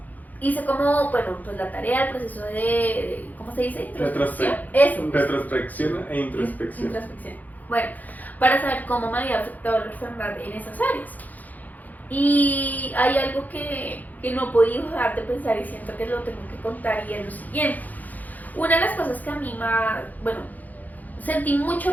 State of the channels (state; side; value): late; right; 0.081 ms